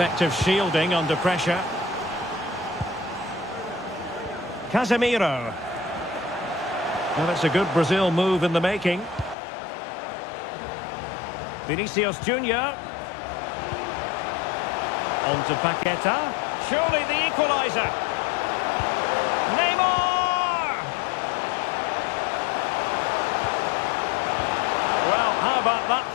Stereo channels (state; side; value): drops out; right; at 9.3 s